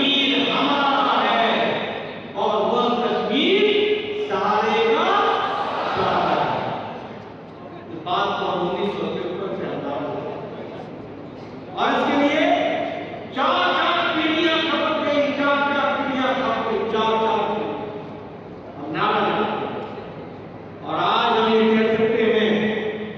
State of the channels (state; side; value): identical; both; correlation 1.00